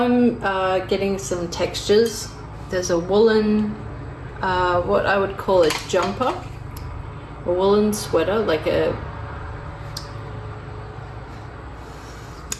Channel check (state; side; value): identical; both; correlation 1.00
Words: getting some textures. There's a woolen, what I would call a jumper, a woolen sweater, like